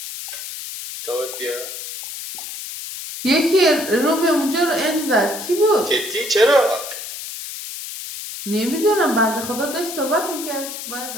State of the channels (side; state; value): left; noise; hiss, 9 dB below the sound